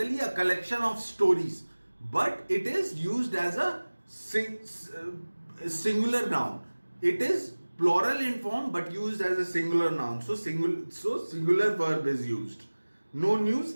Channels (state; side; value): inverted; both; correlation -1.00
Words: a collection of stories, but it is used as a singular noun. It is plural in form but used as a singular noun. So singular verb is used. No